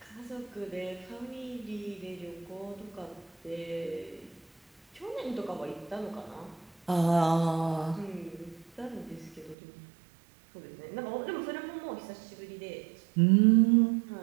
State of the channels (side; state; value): left; drops out; at 9.6 s